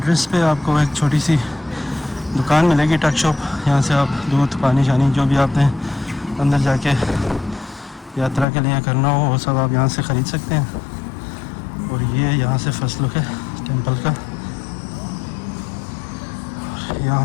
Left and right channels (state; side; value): drops out; right; at 8.5 s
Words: पे आपको एक छोटी सी दुकान मिलेगी, टक shop. यहाँ से आप दूध, पानी शानी जो भी आपने अंदर जाके यात्रा के लिए करना हो वो सब आप यहाँ से ख़रीद सकते हैं। और ये यहाँ से फर्स्ट लुक है टेंपल का। यहाँ